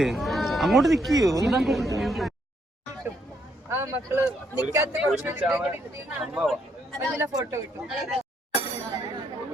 അങ്ങോട്ട് നിൽക്കുകയോ? ആ മക്കള് നിക്കാത്ത ഫോട്ടോ കിട്ടും.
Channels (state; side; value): normal; both; correlation 0.74